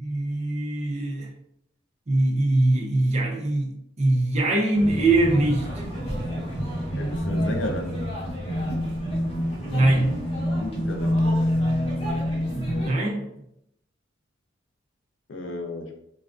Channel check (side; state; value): both; normal; correlation 0.83